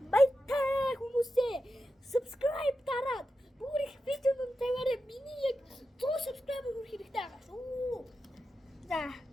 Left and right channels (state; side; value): normal; both; correlation 0.90